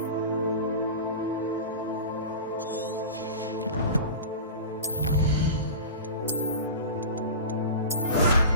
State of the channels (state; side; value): inverted; both; correlation -0.31